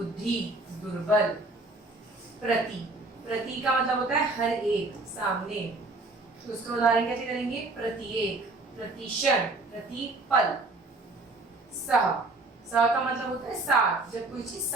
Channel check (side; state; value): left; quieter; 3.1 dB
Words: दुर्बल। प्रति, प्रति का मतलब होता है हर एक, सामने। तो उसका उदाहरण कैसे करेंगे? प्रत्येक, प्रतिक्षण, प्रतिपल। सह, सह का मतलब होता है साथ, जब कोई चीज